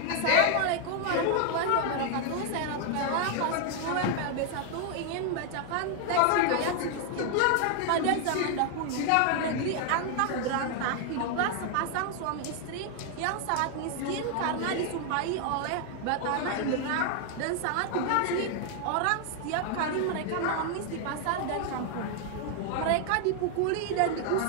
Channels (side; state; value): both; different; correlation 0.00